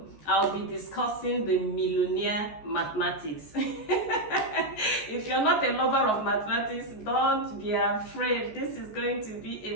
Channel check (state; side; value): late; right; 14 ms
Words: I'll be discussing the millionaire mathematics. If you're not a lover of mathematics, don't be afraid. This is going to be